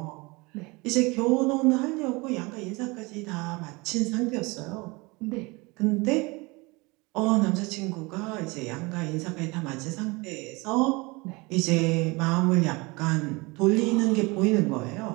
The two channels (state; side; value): quieter; left; 25.4 dB